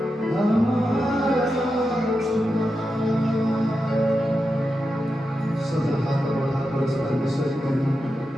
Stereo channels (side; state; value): both; normal; correlation 0.89